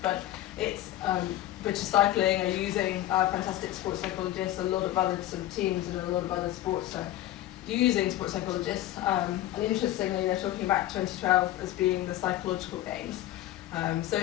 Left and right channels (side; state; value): right; quieter; 14.3 dB